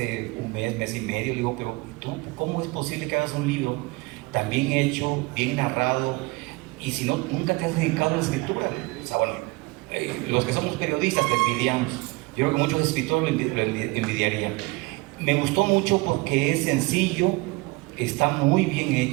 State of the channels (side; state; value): left; quieter; 24.2 dB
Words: un mes y medio, le digo, pero ¿tú cómo es posible que hagas un libro tan bien hecho, bien narrado, y si no, nunca te has dedicado a la escritura? O sea, bueno, los que somos periodistas te envidiamos. Yo creo que muchos escritores lo envidiarían. Me gustó mucho porque es sencillo, está muy bien